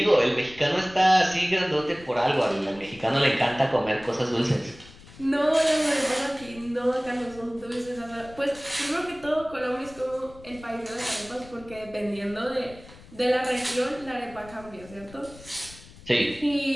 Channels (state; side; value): noise; left; rumble, 20 dB below the sound